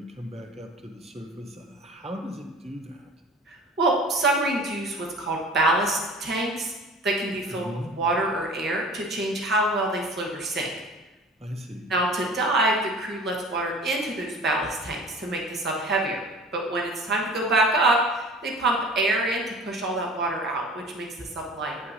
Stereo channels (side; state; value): both; normal; correlation 0.41